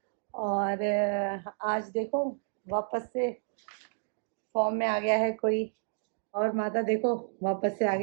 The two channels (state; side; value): silent; left; digital silence